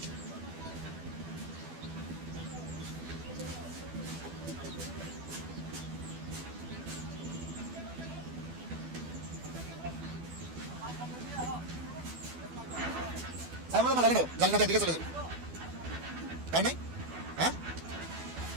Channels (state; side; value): late; left; 12 ms